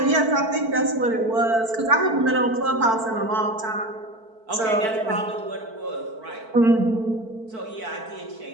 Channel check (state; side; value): late; left; 4.5 ms